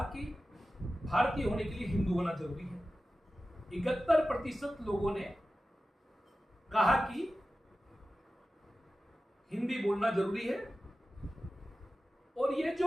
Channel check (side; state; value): both; normal; correlation 0.94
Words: कि भारतीय होने के लिए हिंदू होना जरूरी है। 71% लोगों ने कहा कि हिंदी बोलना जरूरी है। और ये